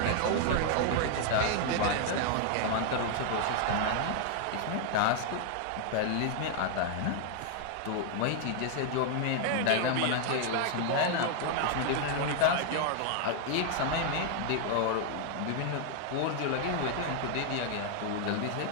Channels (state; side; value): different; both; correlation 0.00